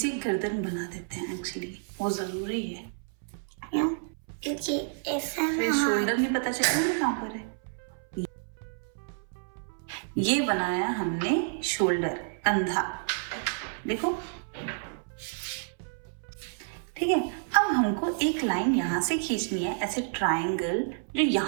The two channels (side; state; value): left; silent; 58 dB below the other